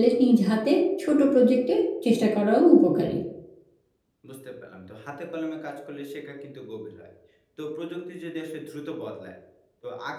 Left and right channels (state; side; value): identical; both; correlation 1.00